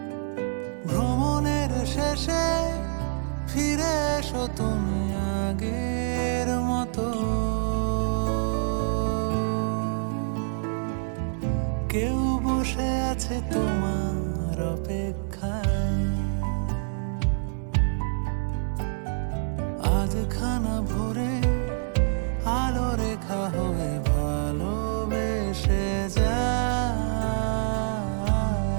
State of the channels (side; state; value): left; silent; digital silence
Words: ভ্রমণের শেষে ফিরে এসো তুমি আগের মতো। কেউ বসে আছে তোমার অপেক্ষায়। আজ খানা ভরে আলো রেখা হয়ে ভালোবেসে যাই।